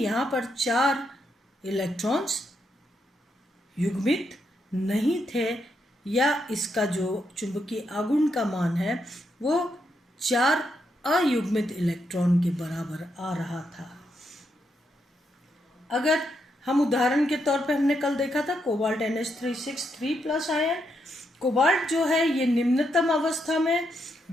पर 4 इलेक्ट्रॉन्स युग्मित नहीं थे, या इसका जो चुंबकीय आघूर्ण का मान है वो 4 अयुग्मित इलेक्ट्रॉन के बराबर आ रहा था। अगर हम उदाहरण के तौर पे हमने कल देखा था कोबाल्ट NH3 आयन, कोबाल्ट जो है ये निम्नतम अवस्था में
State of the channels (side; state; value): both; normal; correlation 0.80